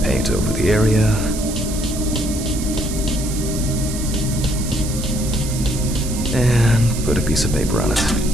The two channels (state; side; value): noise; right; hiss, 9 dB below the sound